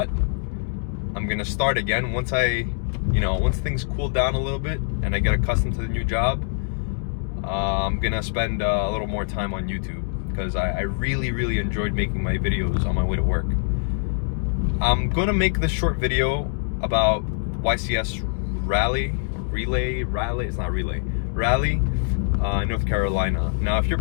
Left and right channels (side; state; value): right; silent; digital silence